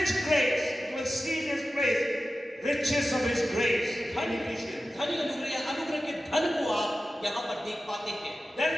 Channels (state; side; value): normal; both; correlation 0.94